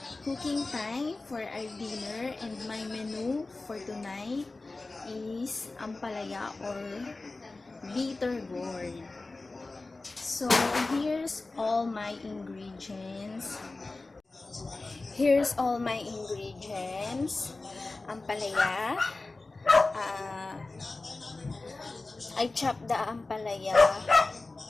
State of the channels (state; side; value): quieter; right; 3.3 dB